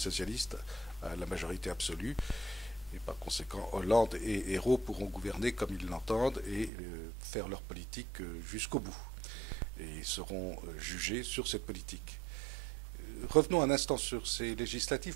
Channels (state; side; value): drops out; left; at 6.7 s